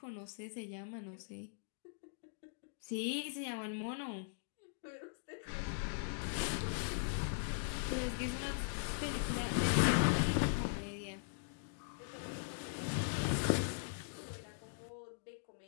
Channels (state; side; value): silent; right; digital silence